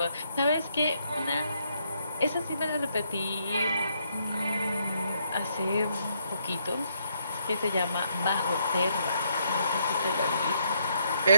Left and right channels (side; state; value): both; inverted; correlation -0.73